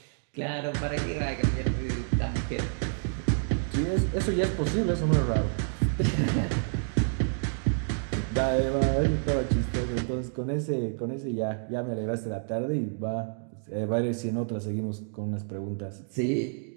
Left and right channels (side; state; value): left; silent; digital silence